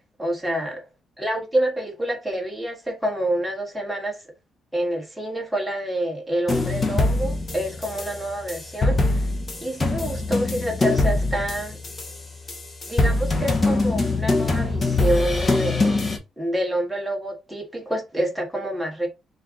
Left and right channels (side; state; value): both; normal; correlation 0.85